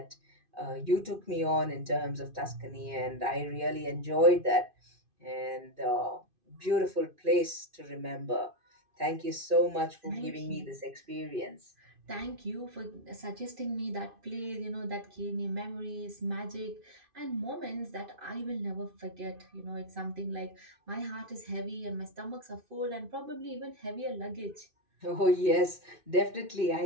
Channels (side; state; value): left; late; 2.5 ms